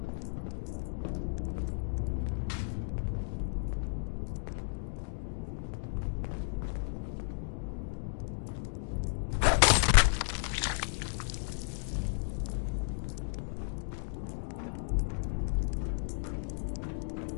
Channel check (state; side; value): silent; right; digital silence